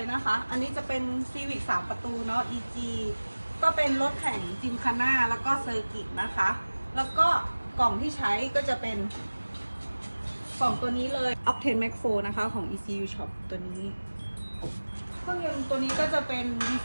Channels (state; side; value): inverted; both; correlation -1.00